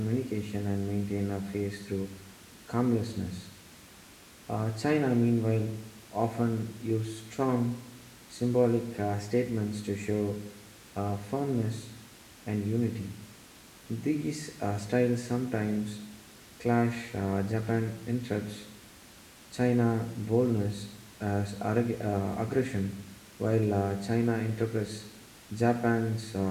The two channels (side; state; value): both; identical; correlation 1.00